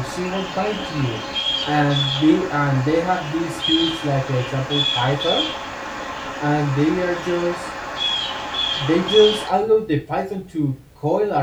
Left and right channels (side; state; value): both; identical; correlation 1.00